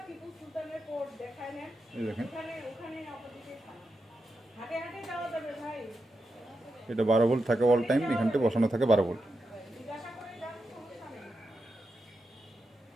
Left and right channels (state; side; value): normal; both; correlation 0.87